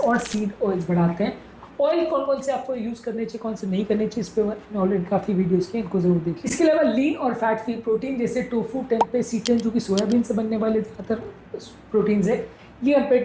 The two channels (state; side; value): identical; both; correlation 1.00